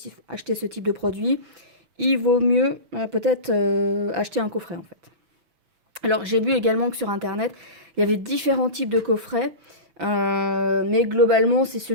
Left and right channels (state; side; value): late; left; 6.0 ms